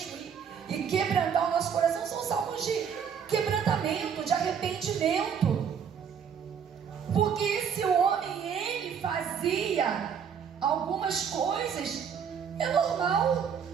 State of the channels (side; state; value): left; quieter; 7.4 dB